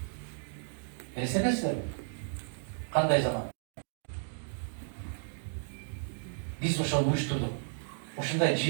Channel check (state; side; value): silent; left; digital silence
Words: Элестетесиздерби? Кандай заман? Биз ошону уюштурдук. Ушундай